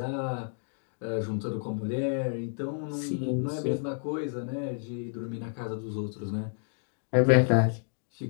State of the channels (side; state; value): right; silent; digital silence